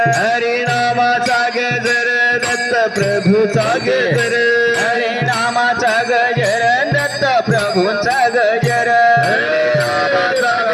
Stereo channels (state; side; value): identical; both; correlation 1.00